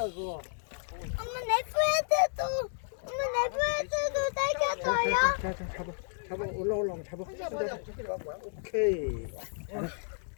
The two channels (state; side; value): silent; right; digital silence